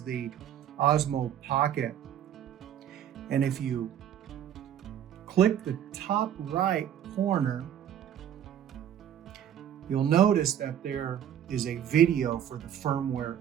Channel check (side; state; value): left; quieter; 10.0 dB